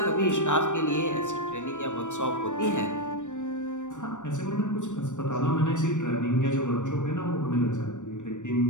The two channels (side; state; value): right; late; 0.85 ms